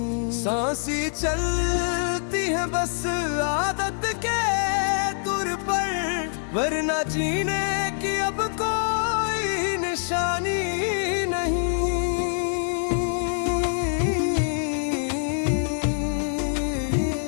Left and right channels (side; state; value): right; silent; 62 dB below the other